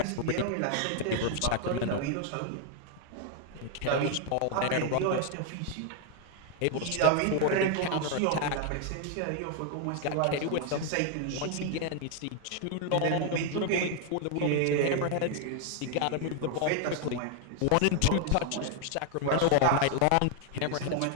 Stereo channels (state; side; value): different; both; correlation 0.00